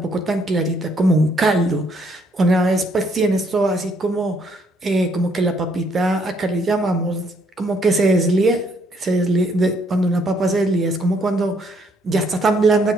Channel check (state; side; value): normal; both; correlation 0.69